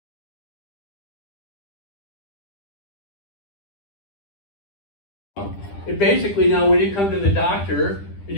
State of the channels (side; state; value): right; late; 10 ms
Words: It basically, now when you come to the doctor, and